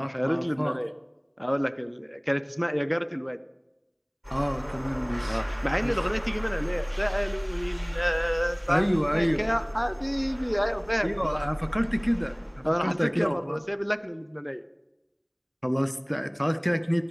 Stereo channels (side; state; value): both; identical; correlation 1.00